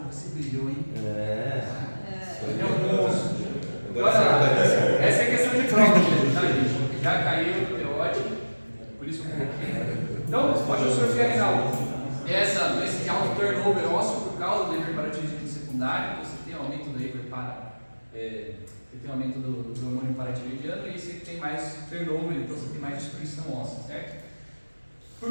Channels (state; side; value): inverted; both; correlation -1.00